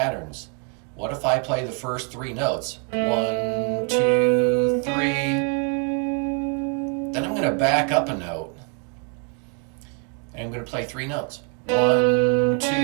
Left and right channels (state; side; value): quieter; left; 36.9 dB